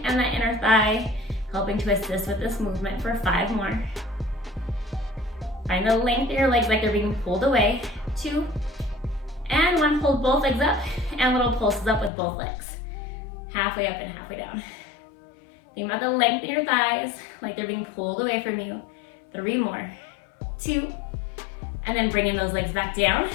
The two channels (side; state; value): right; drops out; at 12.1 s